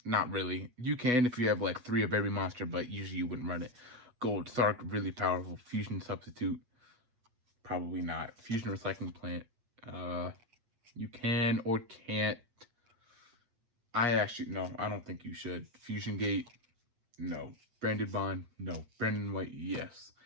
really. You can if you have like 3 of every monster, but usually you wouldn't run it. Gold Sark, really powerful. Fusion Substitute, probably not. Fusion Recycling Plant, you can or can't. I don't think you should. Fusion Gate, no. Branded Bond, no. Branded White, yes.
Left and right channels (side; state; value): left; late; 8.3 ms